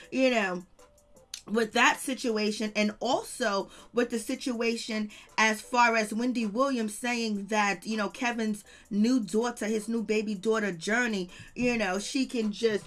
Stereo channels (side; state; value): both; identical; correlation 1.00